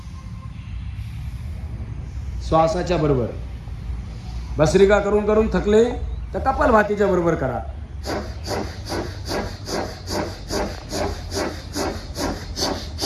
श्वासाच्या बरोबर भस्त्रिका करून करून थकले तर कपालभातीच्या बरोबर करा.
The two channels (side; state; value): both; identical; correlation 1.00